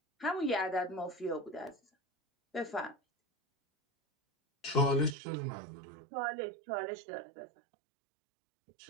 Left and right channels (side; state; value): left; drops out; at 5.2 s